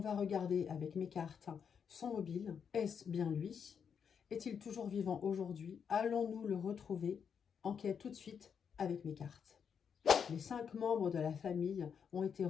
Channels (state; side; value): quieter; right; 7.0 dB